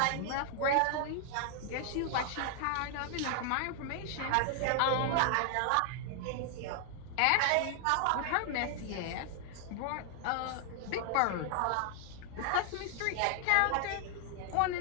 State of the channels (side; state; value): both; different; correlation 0.00